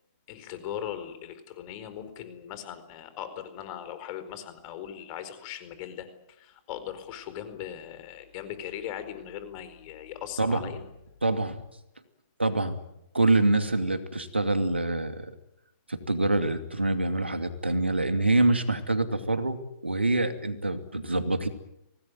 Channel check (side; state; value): both; inverted; correlation -0.82